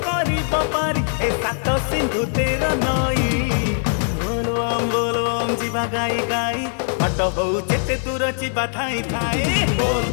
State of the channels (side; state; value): right; silent; digital silence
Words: करिब पारी ए सात सिंधु 13 नई बोलबम जीवा गाई गाई बाट हो जेते दूर जीवा धाई धाई